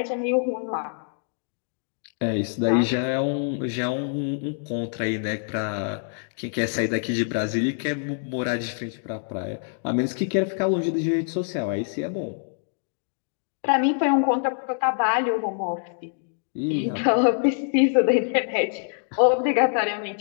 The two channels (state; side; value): silent; right; digital silence